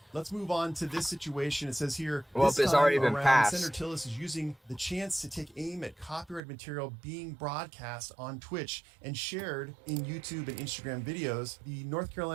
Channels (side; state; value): left; drops out; at 6.4 s